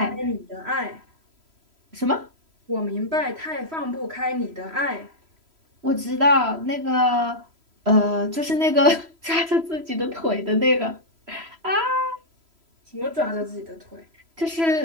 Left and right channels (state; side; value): late; left; 3.0 ms